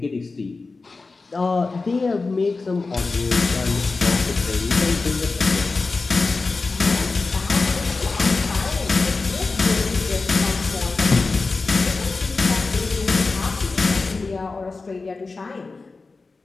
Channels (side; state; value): right; quieter; 3.9 dB